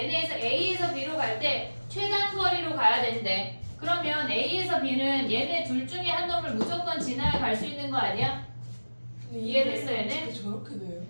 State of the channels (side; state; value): both; inverted; correlation -1.00